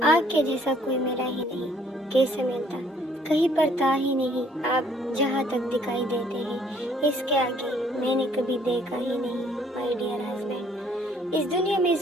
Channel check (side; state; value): both; normal; correlation 0.62